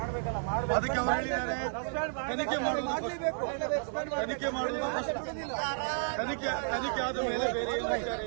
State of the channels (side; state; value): left; silent; 55 dB below the other